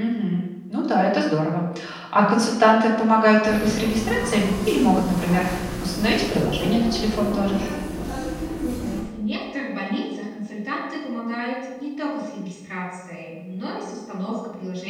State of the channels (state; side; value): identical; both; correlation 1.00